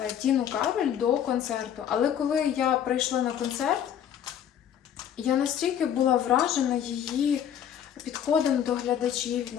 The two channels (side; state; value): right; quieter; 9.4 dB